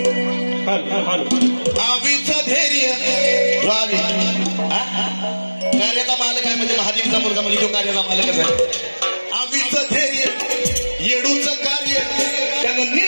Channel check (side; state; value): both; inverted; correlation -1.00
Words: आवीचं धैर्य कार्याचा मालक आहे म्हणजे महादेवीचा मुलगा म्हणजे तो कार्याचा मालकच आहे. आवीचं धैर्य येडूचं कार्य त्यानं